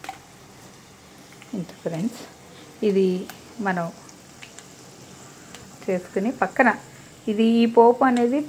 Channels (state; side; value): identical; both; correlation 1.00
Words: ఇంత ఫ్రెండ్స్, ఇది మనం చేసుకుని పక్కన ఈ పోపు అనేది